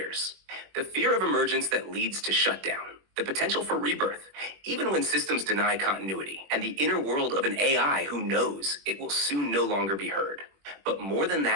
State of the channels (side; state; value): left; late; 21 ms